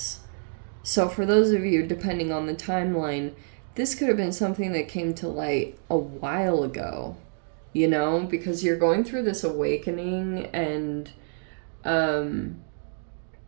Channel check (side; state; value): left; silent; digital silence